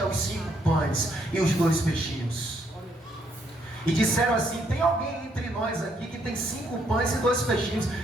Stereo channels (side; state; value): both; normal; correlation 0.72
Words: os 5 pães e os 2 peixinhos. E disseram assim: tem alguém entre nós aqui que tem 5 pães e 2 peixinhos?